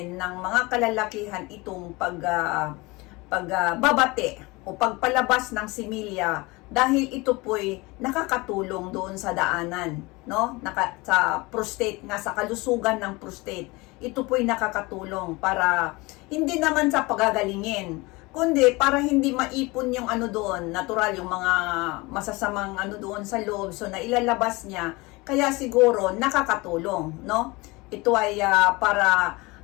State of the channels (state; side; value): quieter; right; 23.7 dB